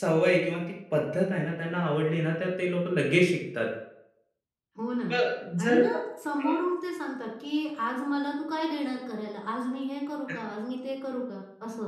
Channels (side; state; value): both; identical; correlation 1.00